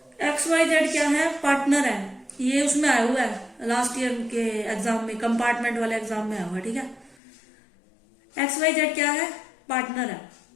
XYZ क्या है, पार्टनर है, ये उसमें आया हुआ है लास्ट ईयर के एग्जाम में, कंपार्टमेंट वाले एग्जाम में आया हुआ है। ठीक है, XYZ क्या है, पार्टनर है,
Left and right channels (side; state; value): right; drops out; at 7.2 s